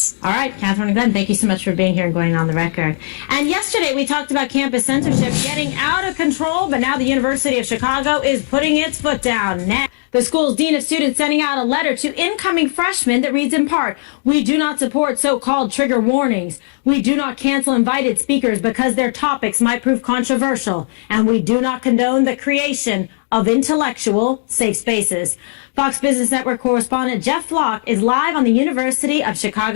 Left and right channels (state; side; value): silent; right; digital silence